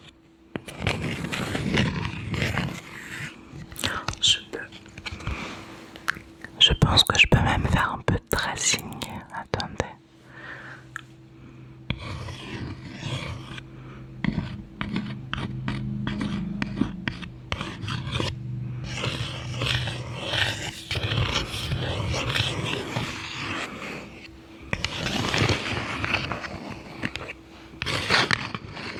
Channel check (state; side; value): identical; both; correlation 1.00